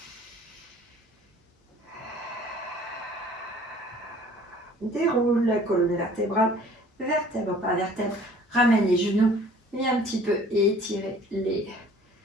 Déroule la colonne vertébrale, vertèbre par vertèbre. Ramène les genoux. Viens un petit peu étirer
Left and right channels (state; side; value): normal; both; correlation 0.52